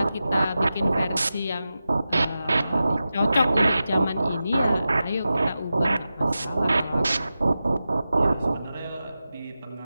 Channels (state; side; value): inverted; both; correlation -0.93